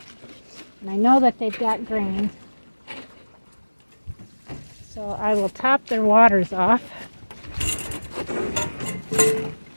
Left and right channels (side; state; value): both; inverted; correlation -1.00